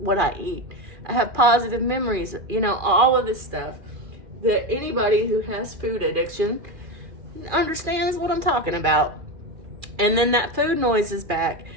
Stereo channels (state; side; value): late; left; 2.4 ms